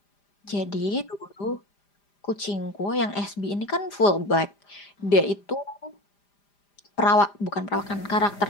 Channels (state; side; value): late; right; 5.0 ms